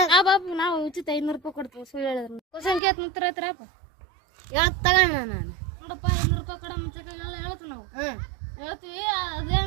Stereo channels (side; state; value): left; drops out; at 2.8 s